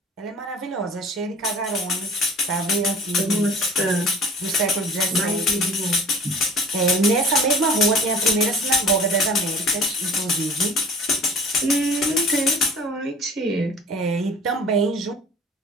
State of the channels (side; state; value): both; normal; correlation 0.46